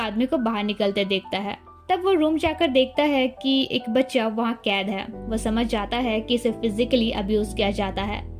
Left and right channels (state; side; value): identical; both; correlation 1.00